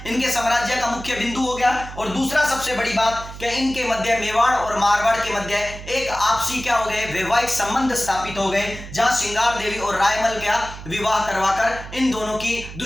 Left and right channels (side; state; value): right; noise; hum, 12 dB below the sound